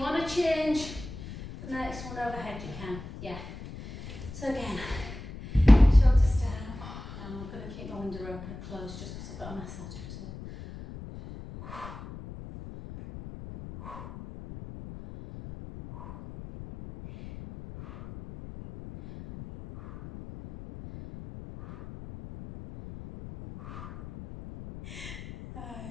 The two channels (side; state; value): left; noise; rumble, 12 dB below the sound